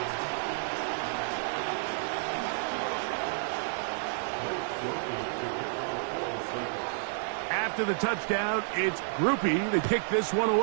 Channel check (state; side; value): silent; left; digital silence